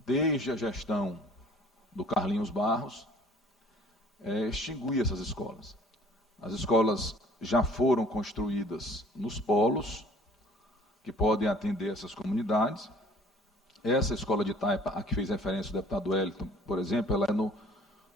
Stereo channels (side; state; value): both; normal; correlation 0.53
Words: desde a gestão do Carlinhos Barros, extinguir essas escolas. As escolas já foram construídas nos polos, que podem atender essas comunidades. Essa escola de Taipa, a que fez referência o deputado Wellington, por exemplo, ela é no